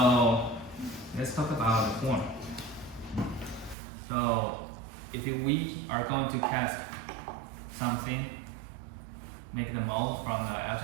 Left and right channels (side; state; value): left; drops out; at 3.8 s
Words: let's talk about the form. So if we are going to cast something, make the mold from the